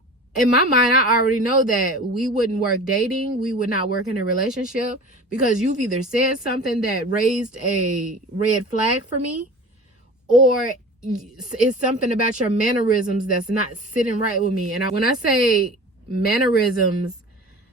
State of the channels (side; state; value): both; normal; correlation 0.38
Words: in my mind, I already know that we wouldn't work dating. We would not work in a relationship, because you've either said something that raised a red flag for me, or it's something about your mannerisms that's not sitting right with me. And when I say mannerisms,